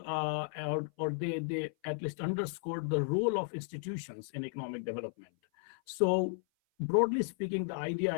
they at least underscored the role of institutions in economic development. So broadly speaking, the idea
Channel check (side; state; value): right; silent; 55 dB below the other